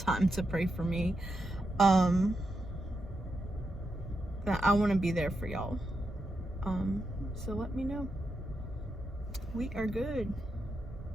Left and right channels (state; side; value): normal; both; correlation 0.85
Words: to pray for me. I want to be there for y'all. So let me know. We are good.